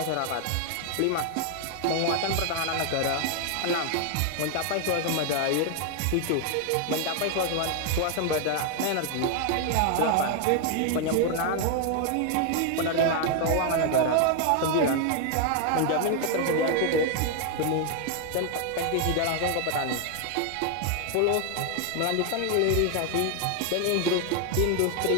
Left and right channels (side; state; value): both; different; correlation 0.00